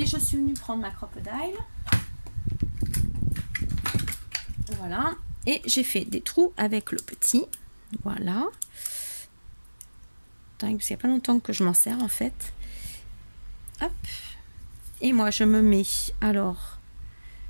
je suis venue prendre ma crocodile. Voilà. Et j'ai fait des trous avec le petit. Voilà. Parce qu'il n'y a pas longtemps que je m'en sers en fait. Hop. Et moi, je me mets, alors,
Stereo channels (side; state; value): both; inverted; correlation -1.00